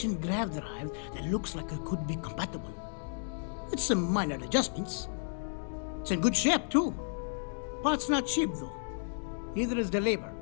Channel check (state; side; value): silent; right; digital silence